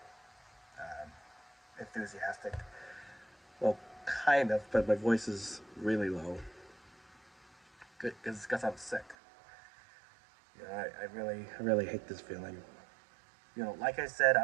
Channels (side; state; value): left; drops out; at 9.2 s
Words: enthusiastic. Well, kind of, but my voice is really low because I'm sick. I really hate this feeling. Like I said,